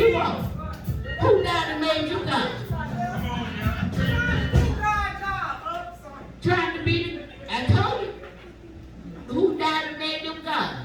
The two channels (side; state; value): both; identical; correlation 1.00